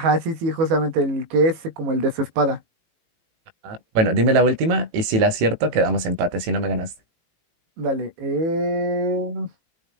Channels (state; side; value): late; left; 18 ms